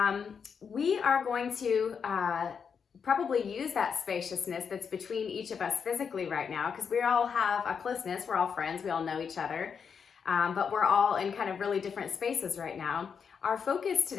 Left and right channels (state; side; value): quieter; right; 6.5 dB